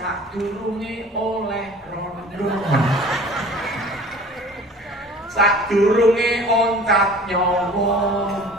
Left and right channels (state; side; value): normal; both; correlation 0.46